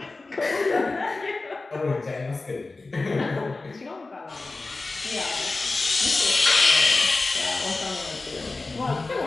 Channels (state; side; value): quieter; right; 3.5 dB